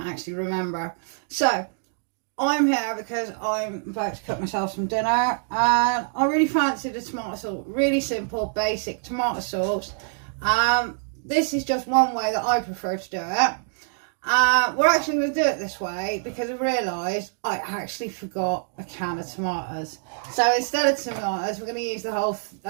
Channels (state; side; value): silent; left; digital silence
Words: actually remember. So I'm here because I'm about to cook myself some dinner, and I really fancy the tomato sauce. Really simple, basic tomato sauce. This is just one way that I prefer to do it. We're actually going to do it this way because I realised I actually forgot a can of tomatoes. So instead of tomatoes, we're going to use the whole